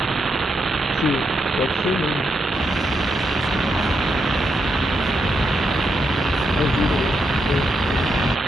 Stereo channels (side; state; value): both; normal; correlation 0.82